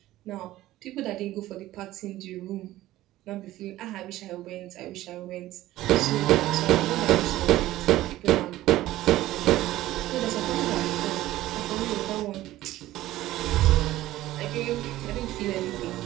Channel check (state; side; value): quieter; left; 15.6 dB